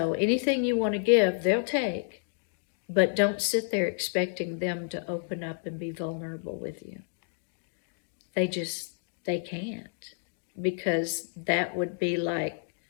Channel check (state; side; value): silent; right; digital silence